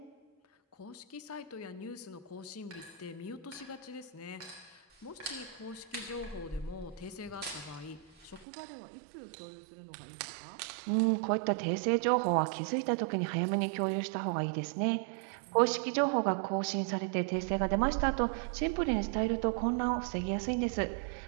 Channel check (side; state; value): left; drops out; at 8.5 s